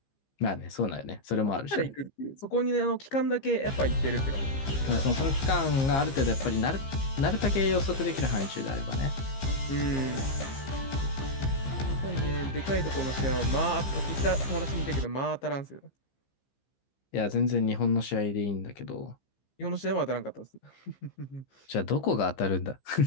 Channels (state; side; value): late; right; 15 ms